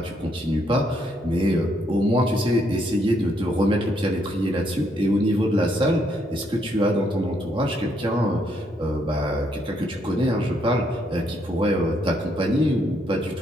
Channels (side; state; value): both; normal; correlation 0.73